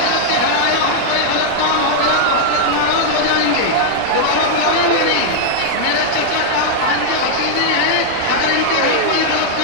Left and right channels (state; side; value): different; both; correlation -0.01